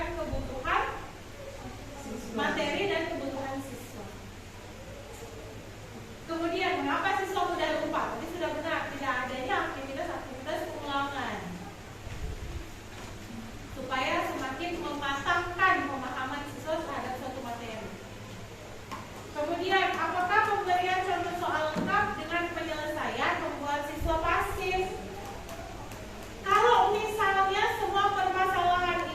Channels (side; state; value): both; identical; correlation 1.00